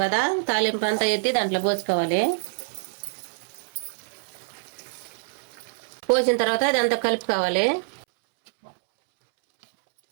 కదా, తాలింపు అంతా ఎత్తి దాంట్లో పోసుకోవాలి. పోసిన తర్వాత ఇదంతా కలుపుకోవాలి.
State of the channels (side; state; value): left; silent; 62 dB below the other